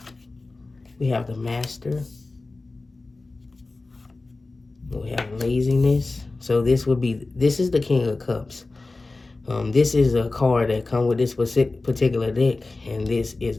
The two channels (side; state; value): right; quieter; 3.4 dB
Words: We have the master. We have laziness. So this is the King of Cups. This is a card that comes with this particular deck, and this is